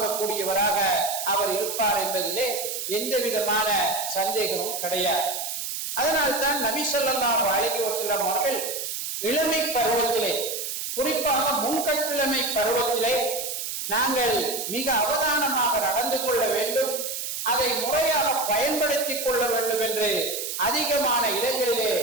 அவர் இருப்பார் என்பதிலே எந்த விதமான சந்தேகமும் கிடையாது. அதனால்தான் நபி ஸல்லல்லாஹு அலைஹி வஸல்லம் அவர்கள் இளமை பருவத்திலே, குறிப்பாக முன்கட்டிளமை பருவத்திலே நாங்கள் மிக அவதானமாக நடந்து கொள்ள வேண்டும், அதை முறையாக பயன்படுத்திக் கொள்ள வேண்டும் என்று அதிகமான இடங்களிலே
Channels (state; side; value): noise; right; hiss, 5 dB below the sound